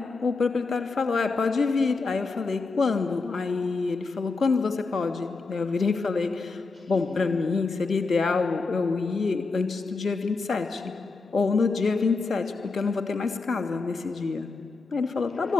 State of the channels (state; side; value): quieter; right; 4.1 dB